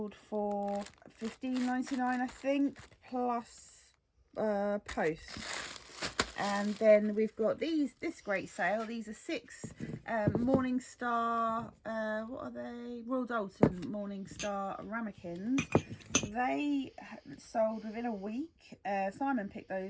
for £15.99 I think, plus post. And then we've got this great sale. These are 6 Morningstar, what are they? Royal Dalton Morningstar ramekins. They sold within a week. Simon picked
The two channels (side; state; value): both; identical; correlation 1.00